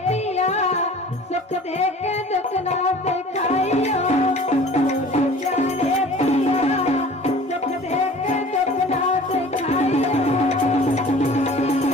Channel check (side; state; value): both; normal; correlation 0.46